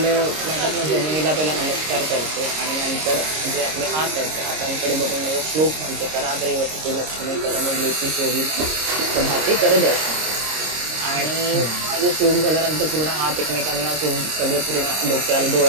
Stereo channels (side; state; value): left; late; 26 ms